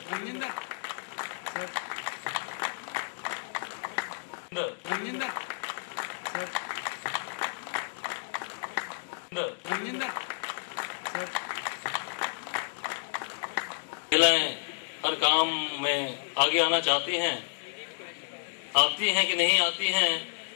महिलाएं हर काम में आगे आना चाहती हैं, आती हैं कि नहीं आती हैं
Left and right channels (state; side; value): silent; right; digital silence